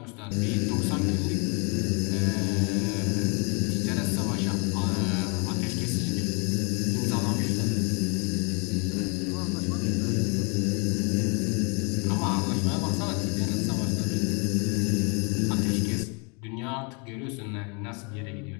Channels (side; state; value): right; quieter; 33.5 dB